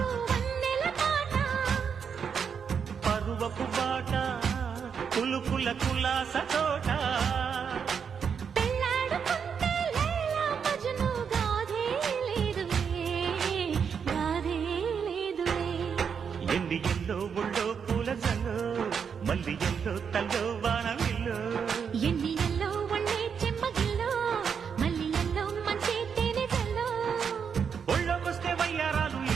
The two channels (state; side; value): quieter; left; 6.8 dB